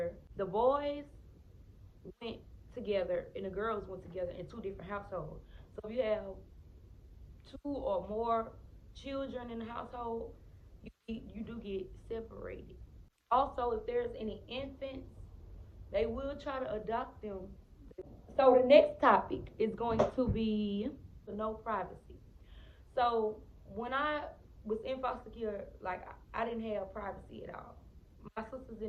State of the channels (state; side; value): identical; both; correlation 1.00